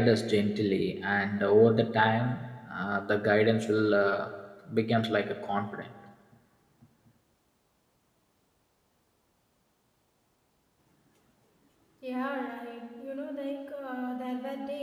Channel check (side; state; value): both; identical; correlation 1.00